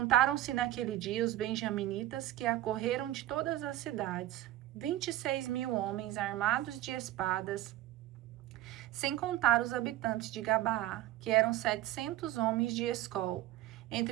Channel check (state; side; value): quieter; left; 14.4 dB